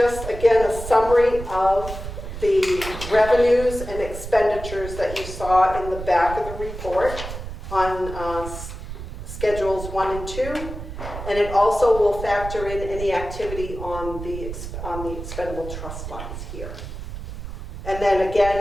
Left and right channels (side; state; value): right; noise; rumble, 9 dB below the sound